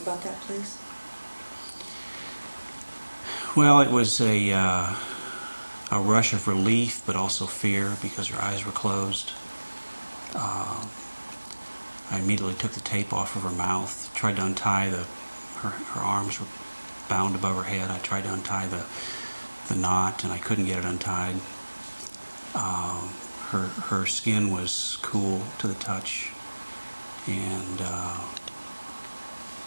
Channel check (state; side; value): inverted; both; correlation -1.00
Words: that, please. Well, it was a rush of relief, but also fear, because her eyes were closed. I immediately took the tape off of her mouth, tried to untie her arms were bound above her head. I tried to untie the knot, and I couldn't get it untied. Her skin was cool to the touch, and